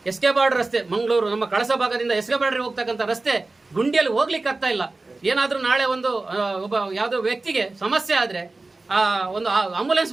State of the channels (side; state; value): left; quieter; 3.3 dB